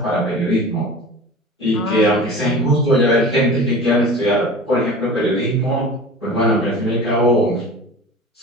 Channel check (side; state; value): both; normal; correlation 0.37